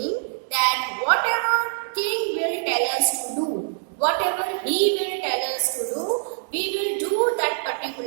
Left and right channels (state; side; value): silent; left; 62 dB below the other